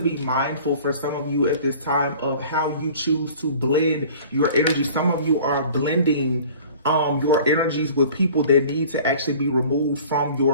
mindful for some of you at this time of how you choose to blend your energy. Some of you are blending your energies with people that need to actually be removed from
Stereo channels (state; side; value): inverted; both; correlation -0.46